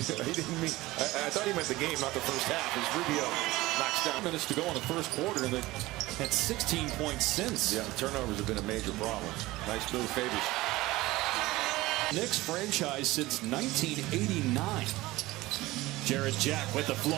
didn't mean. I thought he meant the game, not the first half. As Rubio knocks down. Minutes to go in the first quarter, and they had 16 points since. Yeah, turnovers have been a major problem. Nice move, Favors. Knicks franchise since 1989. Jarrett Jack with the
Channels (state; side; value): quieter; left; 19.0 dB